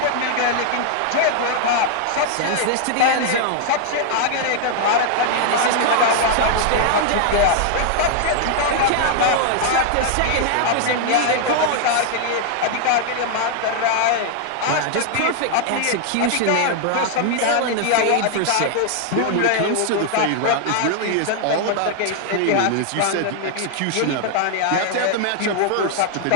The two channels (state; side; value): different; both; correlation 0.00